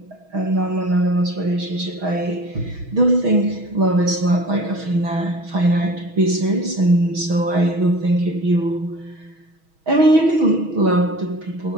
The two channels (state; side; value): late; left; 6.2 ms